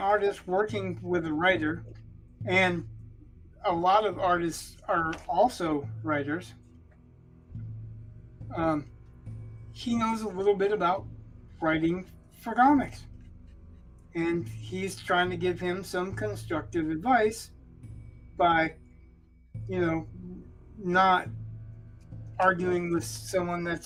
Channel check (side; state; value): both; identical; correlation 1.00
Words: working with a writer, and a lot of artists are also writers, he knows a little bit about writing for comics. And he's trying to give him some constructive advice by, not arguing with someone